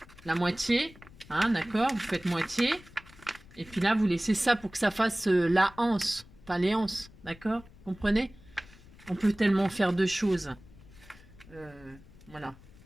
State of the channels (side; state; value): left; noise; rumble, 22 dB below the sound